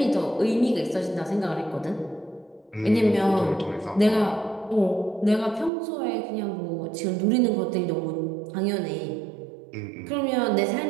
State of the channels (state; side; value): drops out; left; at 5.7 s